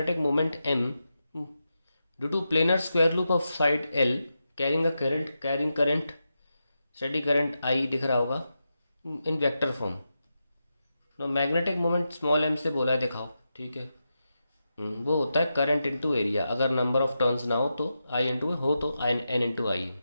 moment M due to planar square loop of side L carrying current steady current I दिख रहा होगा in vector form. No magnetic moment small m से बोला है, दिखाओ। ठीक है। वो होता है करंट इनटू एरिया। अगर नंबर ऑफ टर्न्स ना हो तो I इंटू हो तो n इंटू आई।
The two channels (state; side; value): inverted; both; correlation -0.88